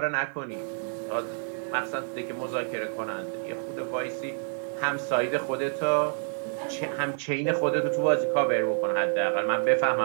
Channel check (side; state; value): left; silent; digital silence